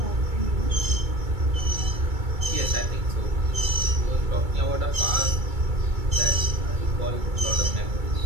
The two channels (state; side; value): late; left; 2.3 ms